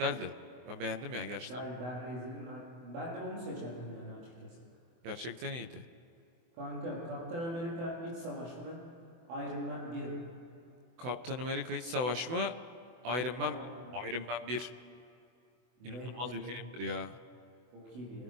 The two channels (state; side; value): late; left; 24 ms